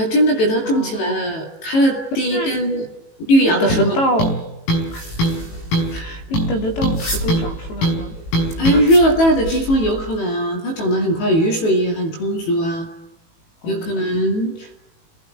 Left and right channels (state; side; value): late; right; 18 ms